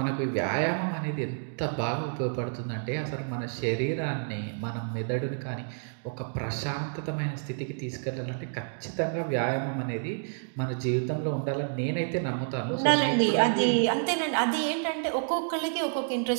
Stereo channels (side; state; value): left; silent; digital silence